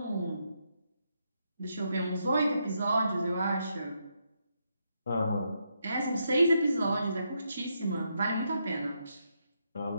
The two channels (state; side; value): inverted; both; correlation -0.80